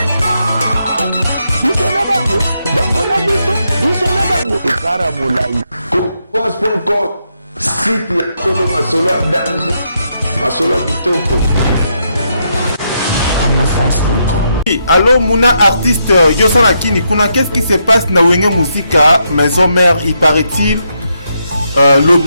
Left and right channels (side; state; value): both; inverted; correlation -0.79